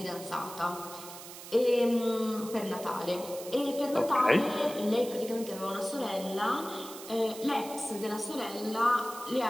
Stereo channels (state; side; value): noise; right; hiss, 13 dB below the sound